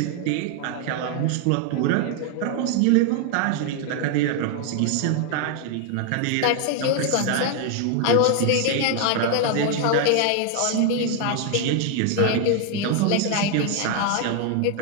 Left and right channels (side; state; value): both; different; correlation 0.00